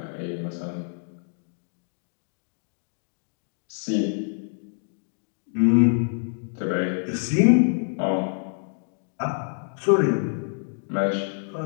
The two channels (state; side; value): silent; right; digital silence